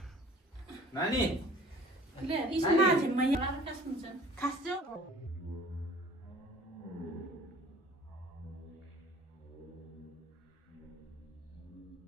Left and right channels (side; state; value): both; normal; correlation 0.49